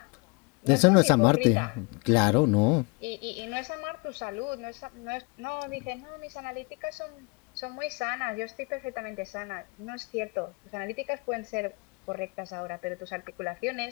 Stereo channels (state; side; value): quieter; right; 30.0 dB